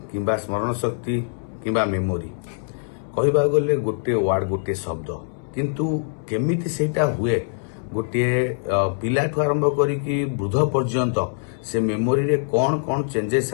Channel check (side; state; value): right; silent; 63 dB below the other